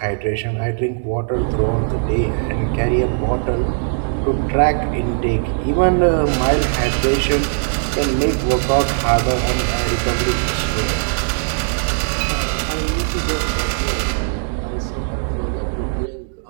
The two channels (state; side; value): silent; left; digital silence